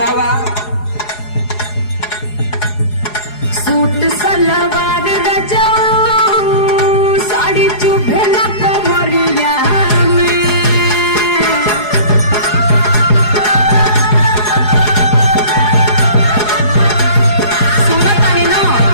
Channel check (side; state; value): right; late; 4.8 ms